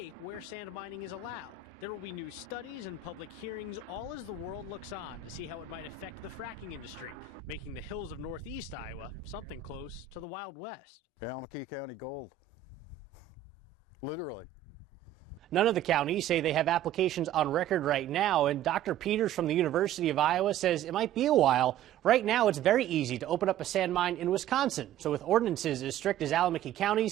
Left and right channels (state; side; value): quieter; left; 10.2 dB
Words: where sand mining is allowed. There will be new studies and public hearings, all as the world looks on to see how it might affect the fracking industry, making the hills of northeast Iowa something close to the Wild West. ALLAMAKEE County gold. Literally. None of the counties say they have applications on record right now, and Dr. Peters from the University of Iowa says it might be a while. Right now, it's very easy to open up a sand mine in Wisconsin, so with ordinances as strict as ALLAMAKEE